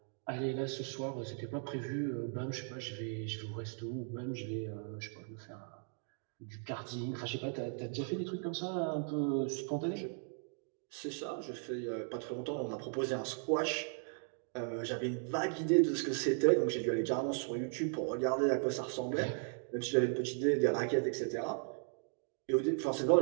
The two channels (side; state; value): left; silent; 53 dB below the other